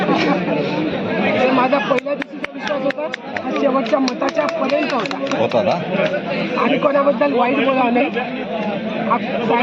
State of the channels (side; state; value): both; identical; correlation 1.00